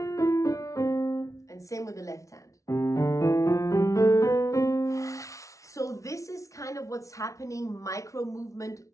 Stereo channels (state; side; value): late; right; 0.15 ms